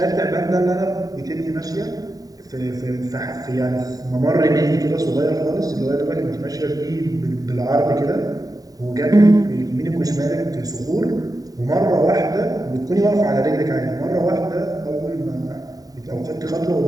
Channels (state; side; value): late; left; 0.18 ms